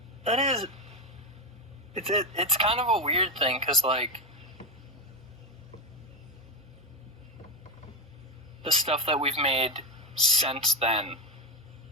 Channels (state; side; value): normal; both; correlation 0.11